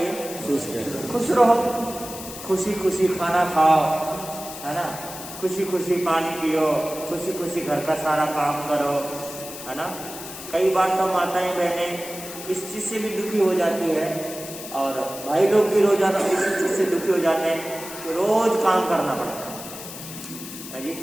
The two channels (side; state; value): left; noise; hiss, 12 dB below the sound